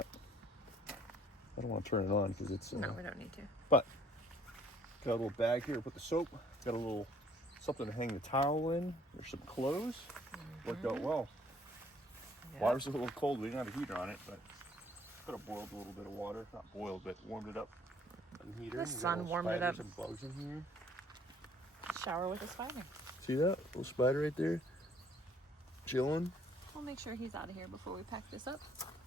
I don't want to turn it on because it's No, we don't need to. but got a little bag here to put the soap. Got a little something to hang the towel in. There's some clothes. Worked out well. Yep. Water's a little cold. We didn't have a heater on it, but could have boiled a little bit of water. Not boiled, but warmed it up. On the heater. The sun warmed it up. Some bugs in here. Shower with a spider. See that little spider right there? Chilling. We'll make sure he's out of here before we pack this up.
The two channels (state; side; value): normal; both; correlation 0.60